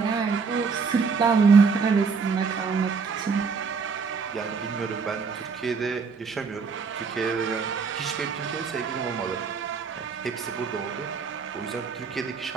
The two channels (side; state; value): left; quieter; 5.3 dB